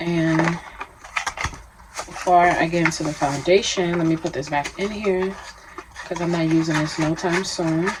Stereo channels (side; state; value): both; identical; correlation 1.00